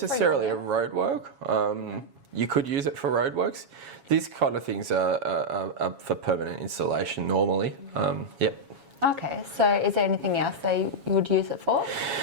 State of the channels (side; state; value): left; late; 7.2 ms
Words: a roadwork. You could use it for roadworks. These kind of things are for permanent installation normally. Yep. Okay, so is there anything else you would use it for?